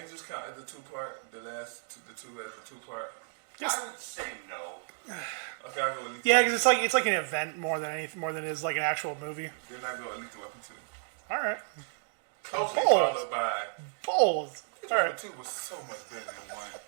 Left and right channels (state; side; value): silent; left; 56 dB below the other